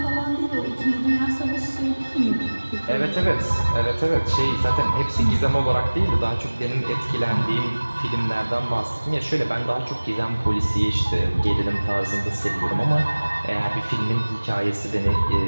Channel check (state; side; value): inverted; both; correlation -1.00